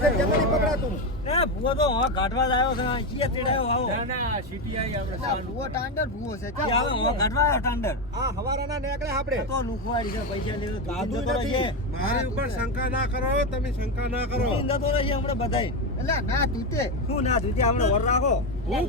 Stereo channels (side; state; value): both; normal; correlation 0.12